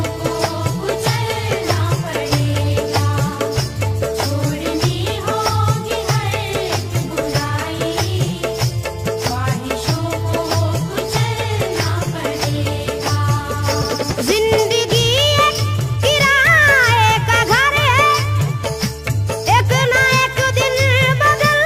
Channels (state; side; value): identical; both; correlation 1.00